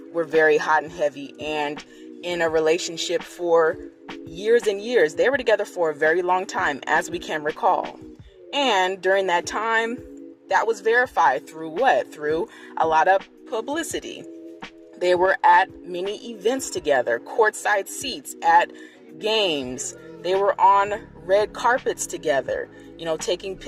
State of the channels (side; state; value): both; identical; correlation 1.00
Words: were very hot and heavy and in a relationship for years and years, they were together for a very long time, as we can recall. And during that time, that was verified through what? Through a lot of publicity. They were at many events together, courtside seats at games. They were on red carpets together, taking